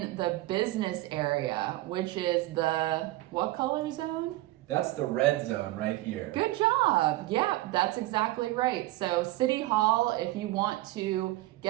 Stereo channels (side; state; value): left; quieter; 17.8 dB